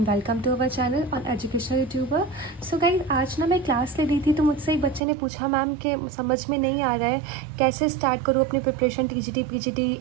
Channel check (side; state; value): left; drops out; at 5.0 s